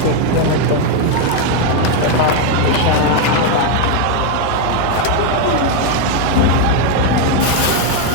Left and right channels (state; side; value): different; both; correlation 0.01